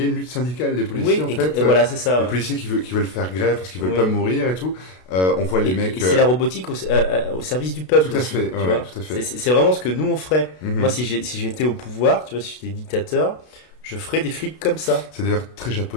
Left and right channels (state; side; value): late; right; 32 ms